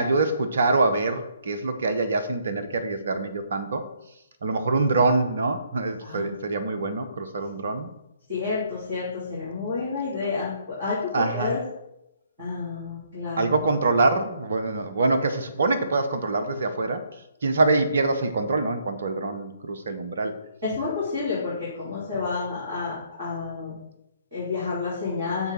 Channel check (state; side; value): inverted; both; correlation -0.69